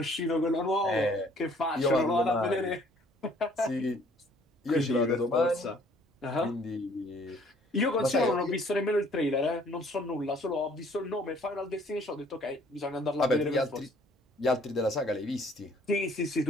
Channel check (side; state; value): both; normal; correlation 0.59